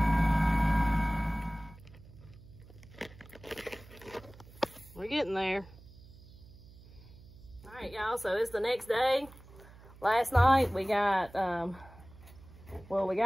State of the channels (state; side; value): noise; right; hum, 21 dB below the sound